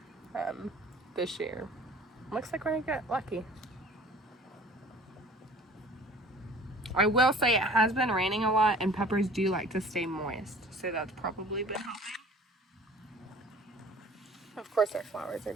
This year, looks like we're gonna get lucky. I will say it has been raining a lot and peppers do like to stay moist, so that's probably been helping. Of course our flowers are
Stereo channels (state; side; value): normal; both; correlation 0.48